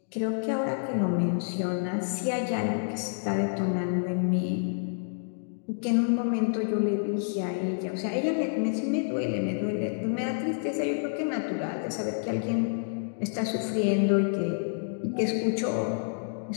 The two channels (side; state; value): right; silent; digital silence